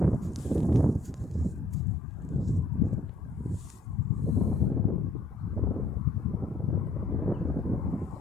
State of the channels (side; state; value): right; quieter; 3.0 dB